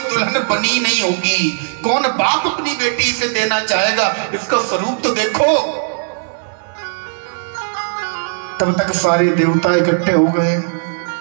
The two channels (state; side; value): silent; left; digital silence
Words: दुल्हन बनी नहीं होगी। कौन बाप अपनी बेटी से देना चाहेगा? इसका स्वरूप तो देखो। तब तक सारे देवता इकट्ठे हो गए।